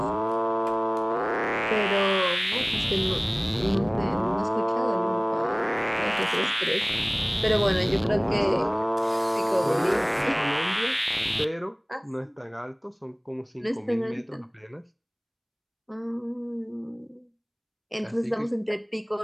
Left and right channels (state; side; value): identical; both; correlation 1.00